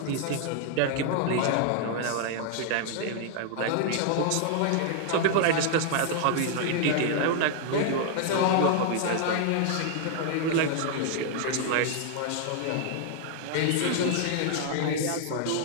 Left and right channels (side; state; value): both; different; correlation 0.00